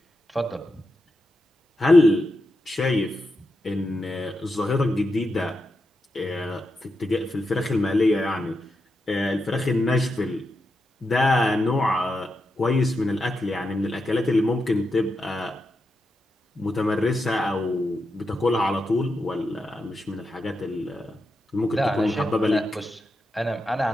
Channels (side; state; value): both; normal; correlation 0.87